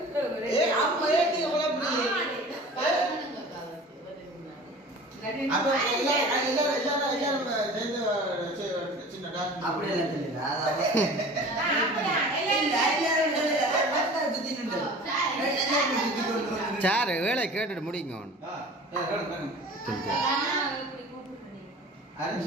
சார் வேலை கேட்டுட்டு முடிங்க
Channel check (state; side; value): normal; both; correlation 0.41